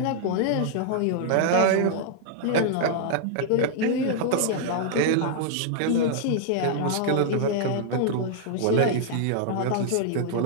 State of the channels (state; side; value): different; both; correlation -0.01